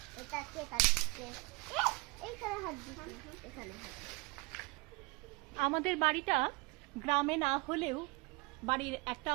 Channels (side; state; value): left; quieter; 26.1 dB